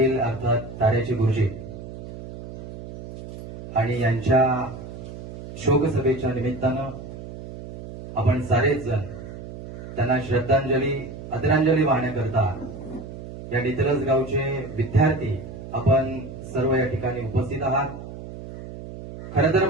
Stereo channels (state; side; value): noise; right; hum, 12 dB below the sound